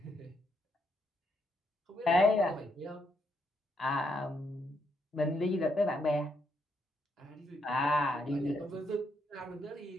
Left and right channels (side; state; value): both; normal; correlation 0.76